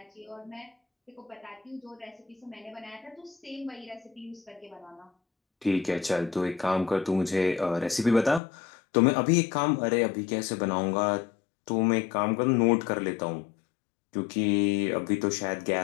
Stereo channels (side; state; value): right; drops out; at 8.4 s